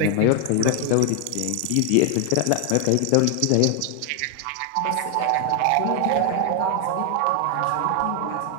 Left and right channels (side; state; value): both; different; correlation 0.00